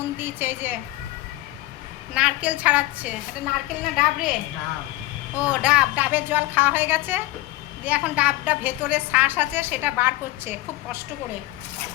দিয়েছে। এই যে নারকেল ছাড়াচ্ছে। এটা নারকেল না ডাব রে? ও ডাব। ডাবের জল খাওয়া হয়ে গেছে, দিয়ে এখন ডাবটা ভেতরে শ্বাস আছে সেটা বার করছে খুব কষ্ট করে।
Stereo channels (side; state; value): right; quieter; 17.8 dB